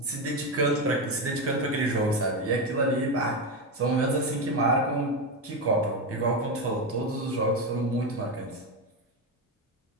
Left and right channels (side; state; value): both; normal; correlation 0.13